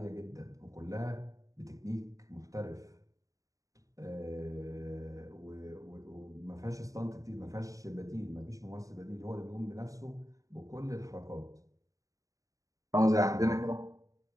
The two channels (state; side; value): late; left; 0.16 ms